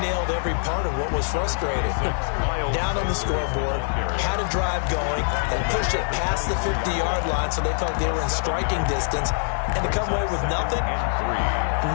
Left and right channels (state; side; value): silent; right; digital silence